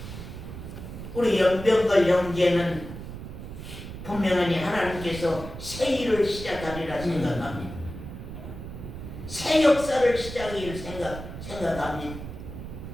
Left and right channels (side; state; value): right; noise; rumble, 10 dB below the sound